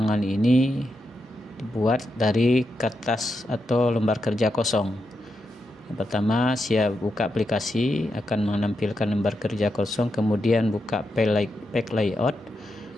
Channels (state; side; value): normal; both; correlation 0.85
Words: ini dibuat dari kertas atau lembar kerja kosong. Yang pertama, siap buka aplikasi, akan menampilkan lembar kerja kosong, kemudian buka page layout